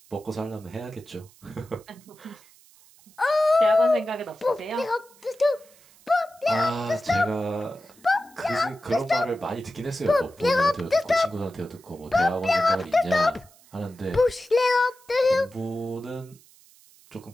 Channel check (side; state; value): right; noise; hiss, 27 dB below the sound